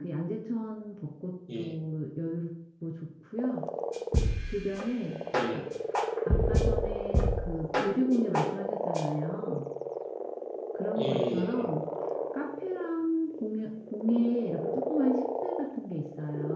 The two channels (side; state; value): both; identical; correlation 1.00